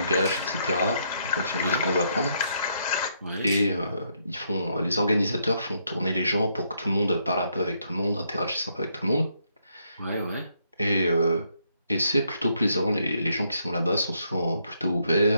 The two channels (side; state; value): both; inverted; correlation -0.74